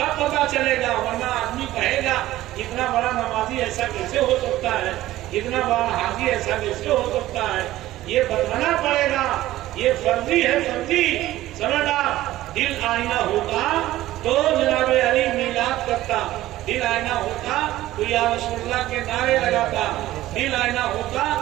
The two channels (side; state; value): left; quieter; 15.4 dB